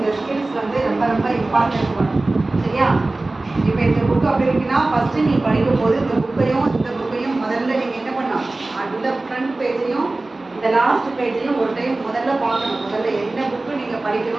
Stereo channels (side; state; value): left; quieter; 3.0 dB